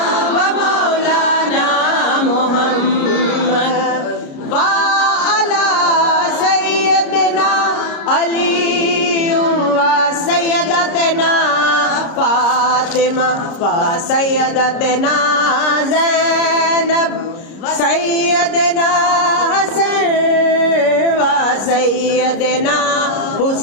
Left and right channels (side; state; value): right; late; 30 ms